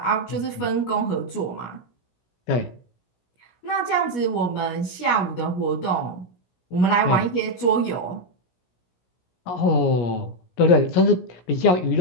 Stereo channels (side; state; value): right; late; 17 ms